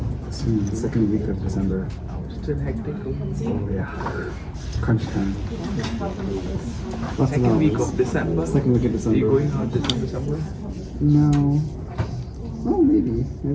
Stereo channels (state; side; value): identical; both; correlation 1.00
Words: Soon, second week of December. Still hectic. Oh yeah. Crunch time. Lots of Second week hours. of December. Second week of Are December. you going out December somewhere? No. Oh, maybe.